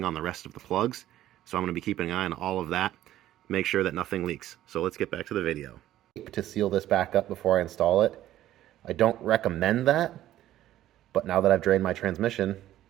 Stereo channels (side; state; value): left; quieter; 13.4 dB